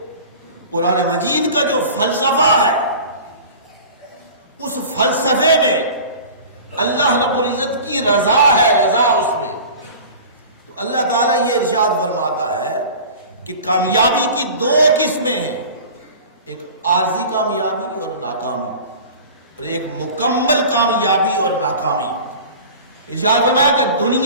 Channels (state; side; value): inverted; both; correlation -0.39